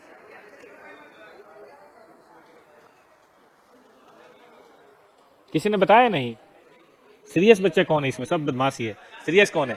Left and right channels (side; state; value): both; identical; correlation 1.00